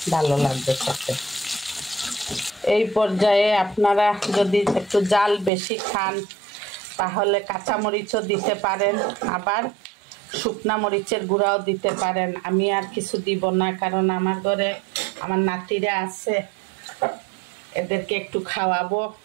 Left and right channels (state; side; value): drops out; left; at 5.5 s